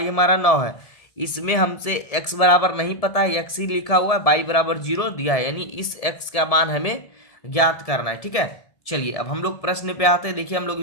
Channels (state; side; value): late; right; 1.7 ms